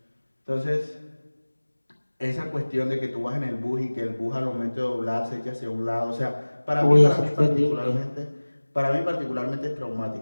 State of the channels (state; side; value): inverted; both; correlation -1.00